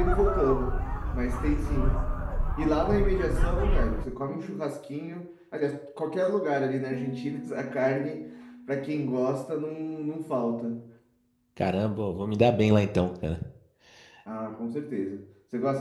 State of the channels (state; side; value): identical; both; correlation 1.00